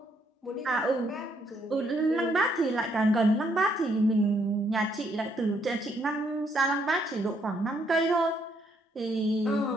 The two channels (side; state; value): both; normal; correlation 0.72